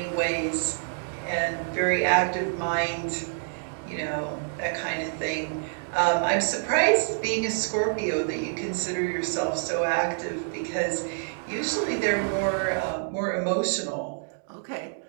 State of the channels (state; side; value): silent; left; digital silence